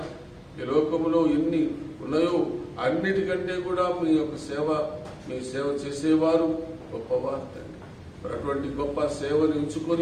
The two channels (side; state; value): both; identical; correlation 1.00